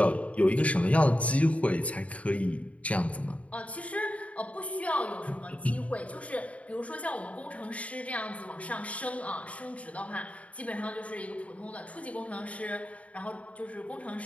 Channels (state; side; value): late; right; 0.066 ms